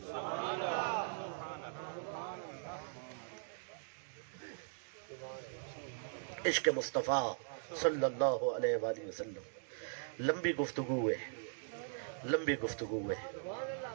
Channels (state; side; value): silent; left; digital silence